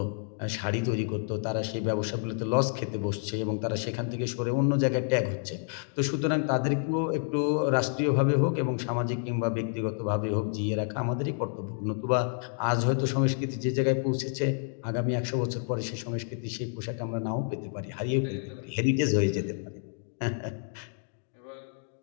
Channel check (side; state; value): right; silent; 58 dB below the other